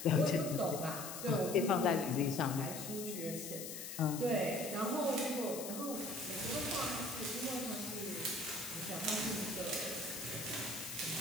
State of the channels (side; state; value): left; noise; hiss, 8 dB below the sound